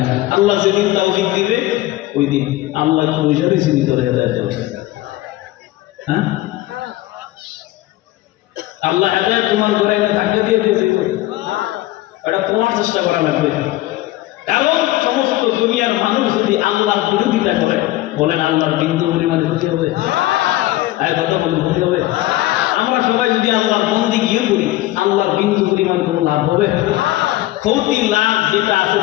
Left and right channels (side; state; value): right; quieter; 16.6 dB